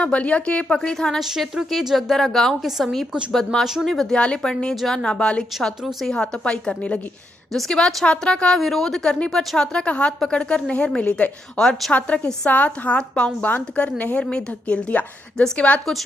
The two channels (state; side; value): normal; both; correlation 0.80